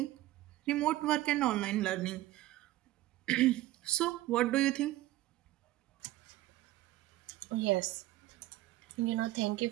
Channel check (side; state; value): left; quieter; 16.4 dB